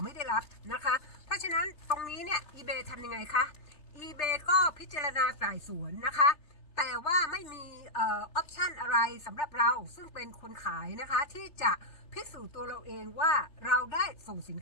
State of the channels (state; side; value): late; right; 3.3 ms